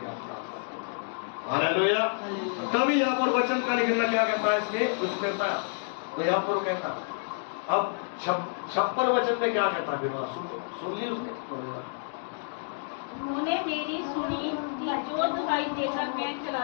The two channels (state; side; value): silent; right; digital silence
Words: आप, हालेलुया। तभी यहाँ पर वचन का लिखना क्या कहता है इसमें, उसमें तो यहाँ पर वो कहता अब 56 वचन में क्या कहता है, फिर सुन ली उसने। तूने मेरी सुनी कि जो दवाई देकर मैं